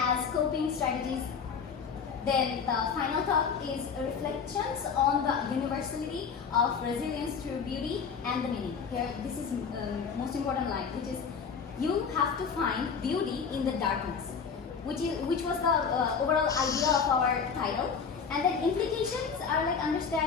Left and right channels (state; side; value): quieter; right; 6.1 dB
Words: coping strategies. Then the final thought is reflections on the universality of resilience through beauty and the meaning. Here, this is most important line, which is you have to find beauty in the darkness, which was the overall idea of our title. And then implications are like